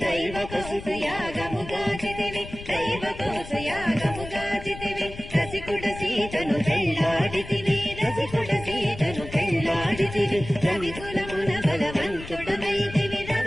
దైవ కోసయాగముగాచితివి దైవ కోసయాగముగాచితివి రసికుడ సీతను పెళ్ళాడితివి రసికుడ సీతను పెళ్ళాడితివి రవికులమున బలవంతుడవైతివి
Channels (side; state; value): left; noise; rumble, 13 dB below the sound